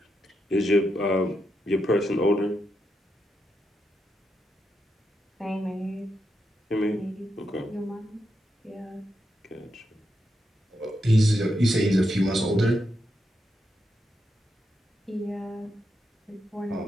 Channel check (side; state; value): both; normal; correlation 0.84